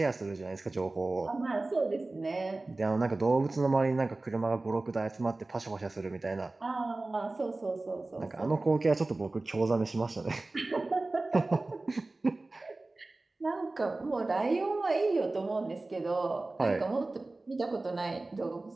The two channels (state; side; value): quieter; left; 3.1 dB